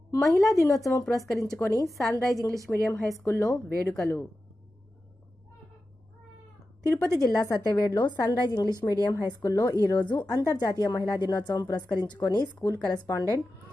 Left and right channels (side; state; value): both; normal; correlation 0.93